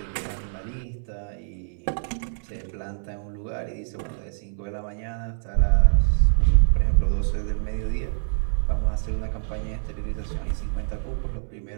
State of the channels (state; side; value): silent; left; 61 dB below the other